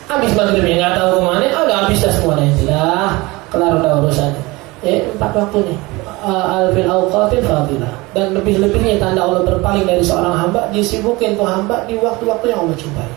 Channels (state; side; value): quieter; left; 22.6 dB